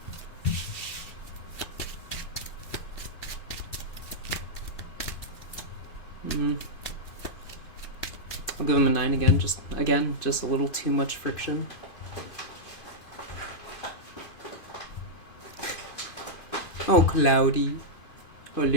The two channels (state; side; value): late; right; 2.5 ms